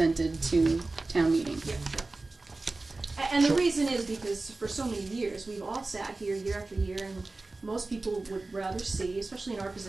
to town meeting. Yeah. And the reason is because for so many years, we've all sat here year after year, and most people would rather see, especially in our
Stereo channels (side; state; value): left; quieter; 3.3 dB